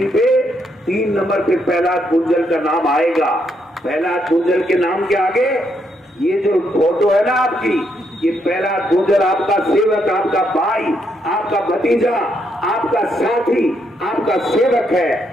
पे 3 नंबर पे प्रहलाद गुंजल का नाम आएगा। प्रहलाद गुंजल के नाम के आगे ये जो फोटो है ना आपकी, ये प्रहलाद गुंजल आपका सेवक, आपका भाई, आपका भतीजा, आपका साथी, आपका सेवक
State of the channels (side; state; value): both; normal; correlation 0.76